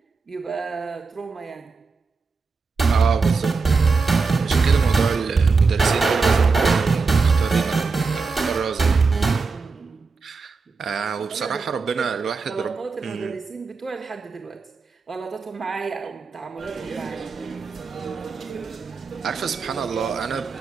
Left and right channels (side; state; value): left; quieter; 4.6 dB